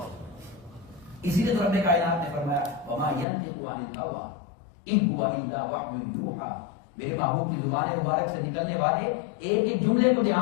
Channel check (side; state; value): right; drops out; at 3.2 s